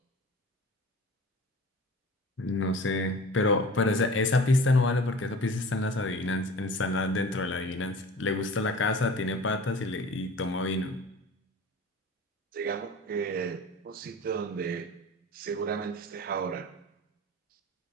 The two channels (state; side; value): normal; both; correlation 0.40